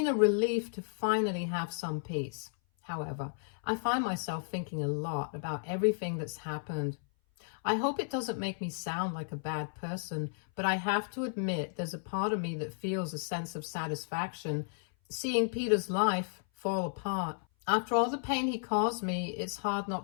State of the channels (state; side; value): silent; right; 56 dB below the other